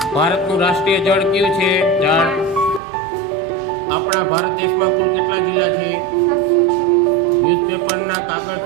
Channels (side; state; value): left; drops out; at 2.8 s